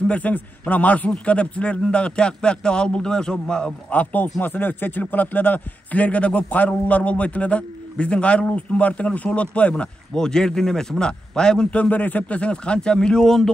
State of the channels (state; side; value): normal; both; correlation 0.88